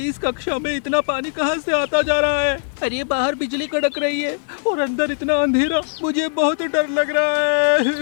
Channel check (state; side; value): silent; right; digital silence